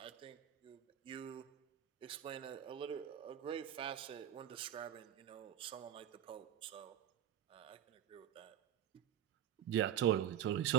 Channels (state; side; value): quieter; left; 10.4 dB